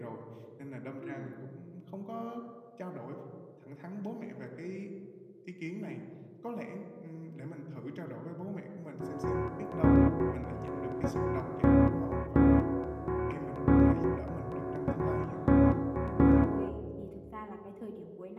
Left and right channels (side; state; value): both; identical; correlation 1.00